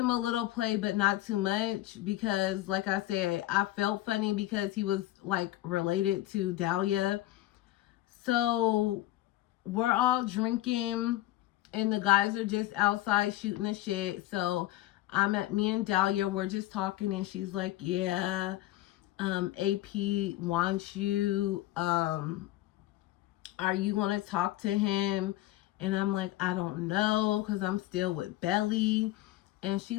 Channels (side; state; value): right; quieter; 15.9 dB